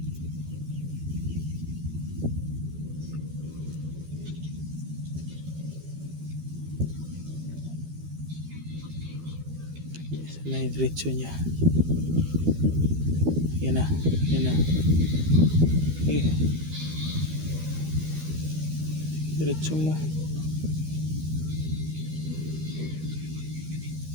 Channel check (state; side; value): late; left; 13 ms